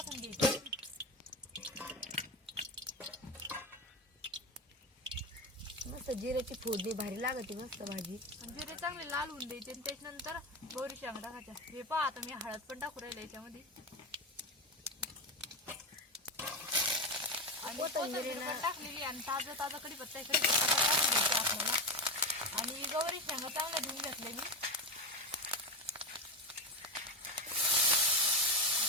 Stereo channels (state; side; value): normal; both; correlation 0.16